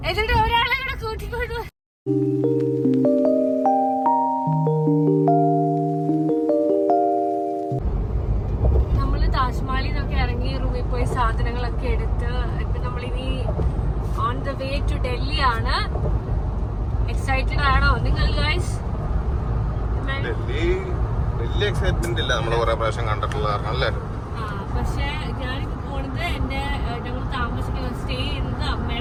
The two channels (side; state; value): both; identical; correlation 1.00